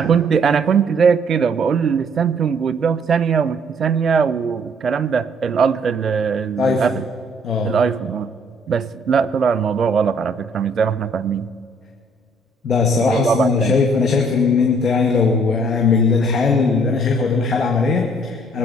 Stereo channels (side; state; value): both; normal; correlation 0.62